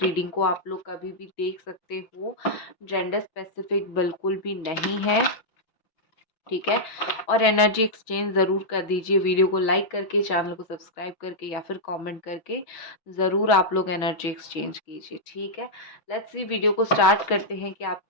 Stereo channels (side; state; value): right; late; 6.2 ms